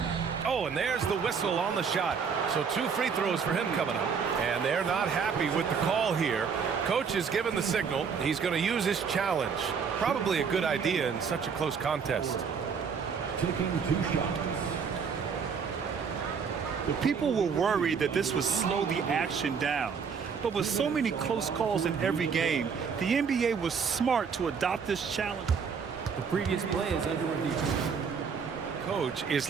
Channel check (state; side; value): quieter; left; 6.2 dB